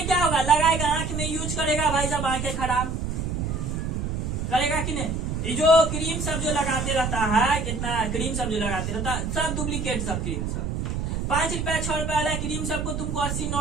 क्या होगा, लगाएगा आंख में यूज करेगा, भाई साहब आंखें खराब करेगा कि नहीं। ये जो क्रीम सब जो लगाते रहता है, कितना क्रीम सब जो लगाते रहता है, सब डुप्लीकेट सब क्रीम सब 5 रुपया 6 रुपया वाला क्रीम सबको तुमको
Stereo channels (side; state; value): right; noise; rumble, 2 dB below the sound